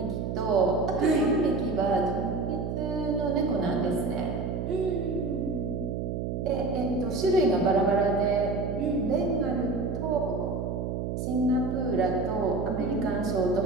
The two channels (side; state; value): right; noise; hum, 3 dB below the sound